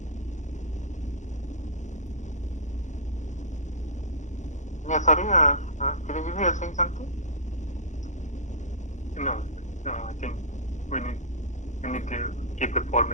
yeah, sorry, Chiranjeev, you are saying something? No, I think we need to keep the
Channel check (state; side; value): late; right; 0.35 ms